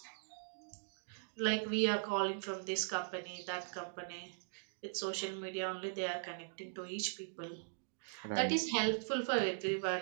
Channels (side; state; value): left; silent; digital silence